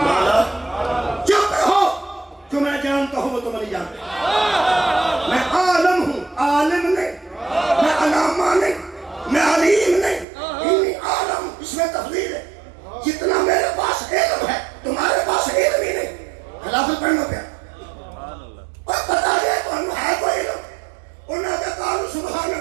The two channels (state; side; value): drops out; left; at 10.2 s